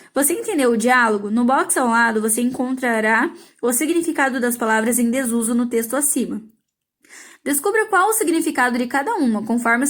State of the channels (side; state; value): both; identical; correlation 1.00